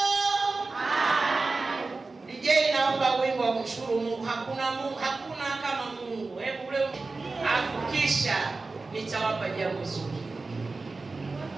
DJ, naomba wimbo wa kumshukuru Mungu. Hakuna kama Mungu. Hebu leo afukisha, nitawapa jambo zuri.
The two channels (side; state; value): left; quieter; 3.7 dB